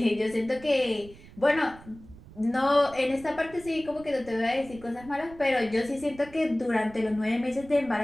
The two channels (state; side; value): noise; right; rumble, 20 dB below the sound